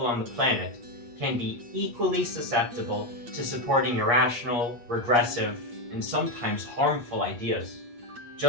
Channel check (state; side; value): late; left; 8.5 ms